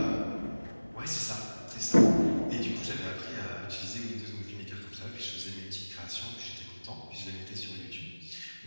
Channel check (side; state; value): both; inverted; correlation -1.00